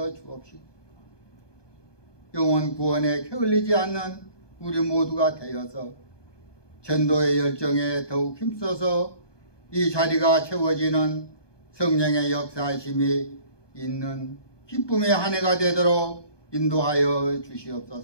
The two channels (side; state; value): right; late; 1.2 ms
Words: 주옵시고, 영혼 구원에 게을리지 않는 우리 모두가 되어서 전도의 열정에 더욱 힘써서 이 자리가 채워지는 성령의 역사하심이 있는 기쁨의 한 해가 되도록 인도하여